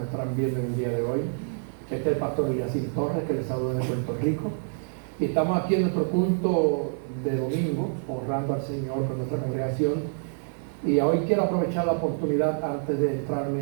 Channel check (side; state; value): left; silent; digital silence